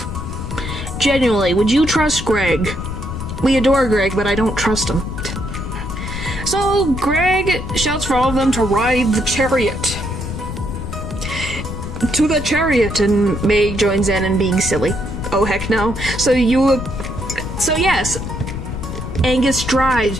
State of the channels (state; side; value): noise; left; rumble, 6 dB below the sound